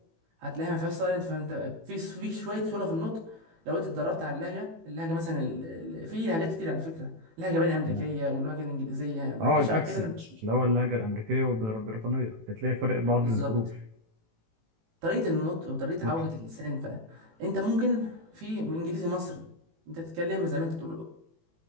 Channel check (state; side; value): late; left; 18 ms